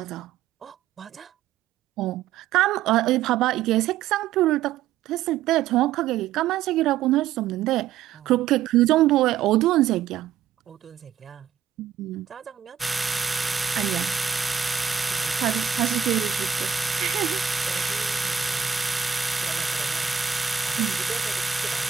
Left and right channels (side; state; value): left; quieter; 8.8 dB